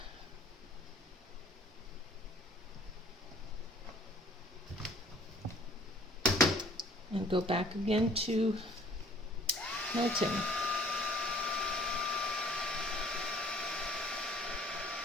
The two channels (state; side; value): normal; both; correlation 0.54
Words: And go back again to melting.